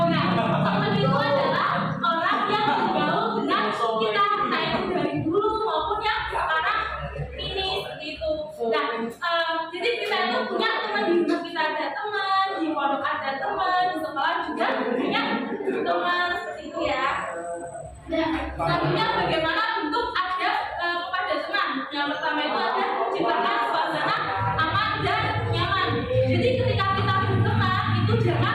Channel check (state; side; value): identical; both; correlation 1.00